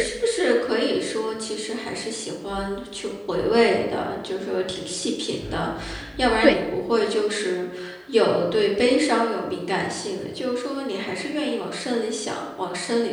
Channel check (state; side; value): identical; both; correlation 1.00